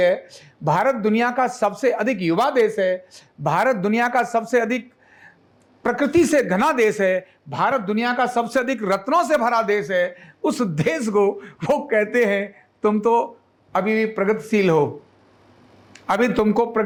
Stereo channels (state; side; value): identical; both; correlation 1.00